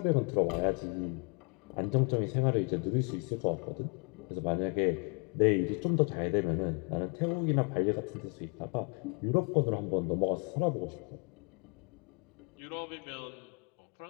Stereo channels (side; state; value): right; quieter; 36.1 dB